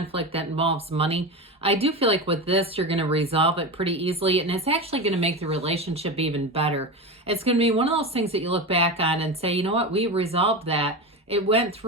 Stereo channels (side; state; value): both; normal; correlation 0.23